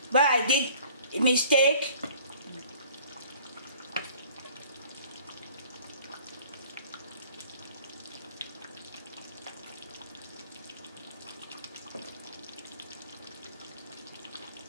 where I did a mistake.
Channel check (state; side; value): inverted; both; correlation -0.51